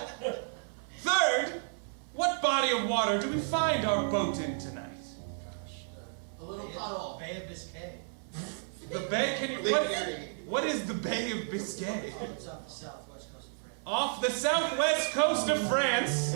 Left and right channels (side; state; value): left; silent; 56 dB below the other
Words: Third, what body of water do we find our boat in tonight? A little puddle. Bay of Biscay. The Bay? Can you... What is the Bay of Biscay? It's off the southwest coast of France. Off the southwest coast of France,